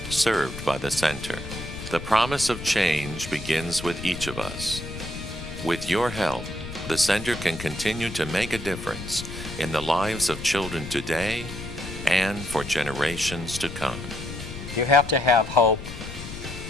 served by the Center. The promise of change begins with each of us. With your help, the Center can continue to make a difference in the lives of children today and for generations to come. You have to have hope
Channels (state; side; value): noise; left; rumble, 10 dB below the sound